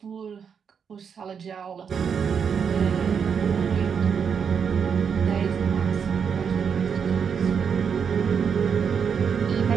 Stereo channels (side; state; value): left; quieter; 6.8 dB